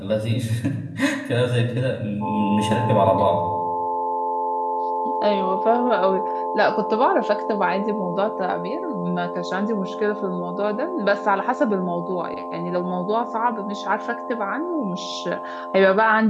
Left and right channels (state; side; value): identical; both; correlation 1.00